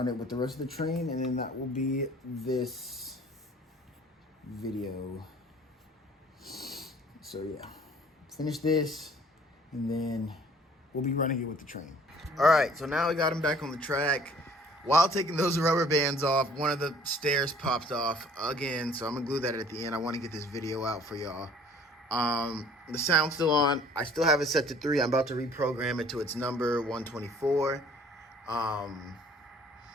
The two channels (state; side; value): normal; both; correlation 0.54